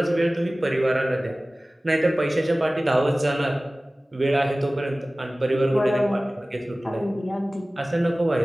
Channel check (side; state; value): both; normal; correlation 0.98